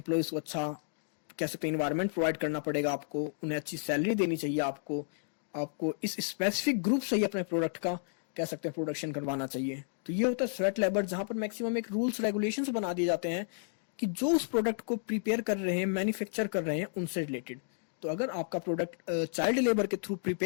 को अच्छा कह सकते हैं इन्वायरमेंट प्रोवाइड करना पड़ेगा आपको, उन्हें अच्छी सैलरी देनी चाहिए आपको, आपको इस स्पेसिफिक ग्रुप से ही अपने प्रोडक्ट का कह सकते हैं प्रोडक्शन करवाना चाहिए। तो ये होता है स्वेट लेबर, जहां पर मैक्सिमम एक रूल्स रेगुलेशंस बना दिए जाते हैं कि जो उस प्रोडक्ट को प्रिपेयर कर रहे हैं, मैन्युफैक्चर कर रहे हैं, उनसे रिलेटेड। तो अगर आपका प्रोडक्ट चाइल्ड लेबर के थ्रू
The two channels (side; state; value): right; silent; digital silence